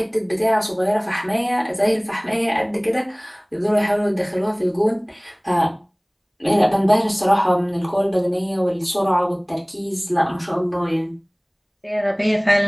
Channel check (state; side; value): identical; both; correlation 1.00